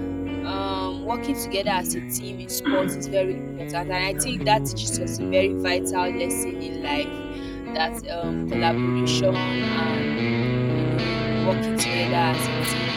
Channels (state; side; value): identical; both; correlation 1.00